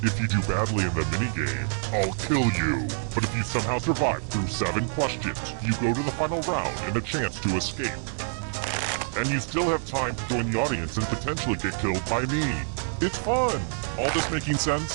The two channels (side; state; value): left; silent; digital silence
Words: If you do badly in the minigame, I'll kill you. But if you somehow survive through 7 questions, you go to the final round and a chance to escape. And you still have time to join the audience and potentially get killed by me. It's fun! All this making